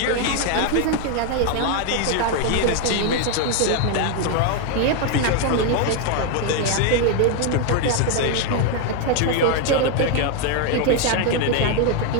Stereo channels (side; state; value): both; different; correlation 0.01